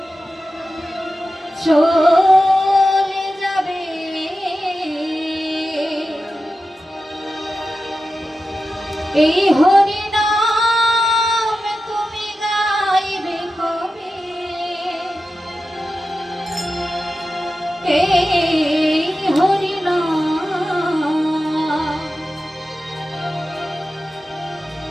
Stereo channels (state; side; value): normal; both; correlation 0.92